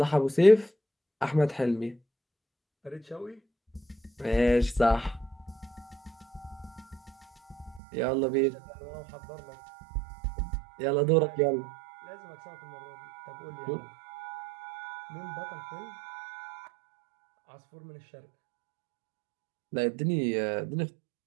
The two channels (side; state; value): left; drops out; at 7.8 s